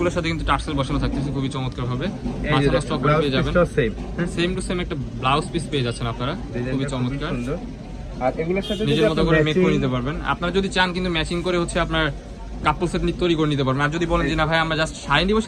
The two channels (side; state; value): both; identical; correlation 1.00